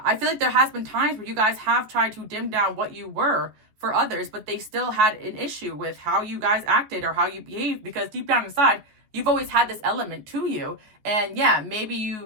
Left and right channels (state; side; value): late; left; 14 ms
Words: I feel like there has been times where you guys have tried to dim down what you were for others, but they still had an issue with how you guys acted or how you behaved, because deep down inside, you've always had this element to you. And yeah, maybe